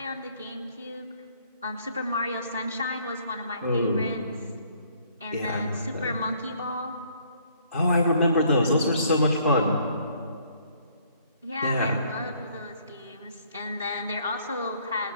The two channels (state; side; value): inverted; both; correlation -0.63